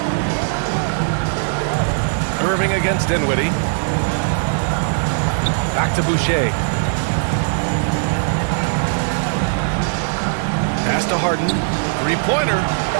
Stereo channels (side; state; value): left; silent; 61 dB below the other